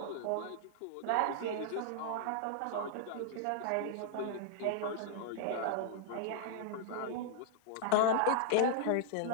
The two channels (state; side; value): different; both; correlation -0.01